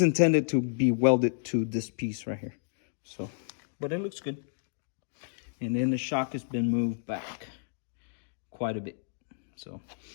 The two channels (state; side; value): silent; right; digital silence